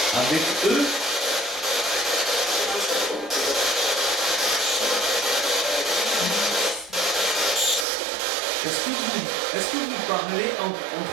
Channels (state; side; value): drops out; left; at 7.9 s